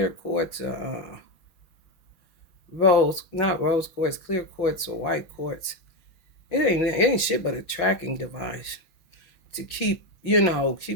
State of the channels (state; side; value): late; right; 6.2 ms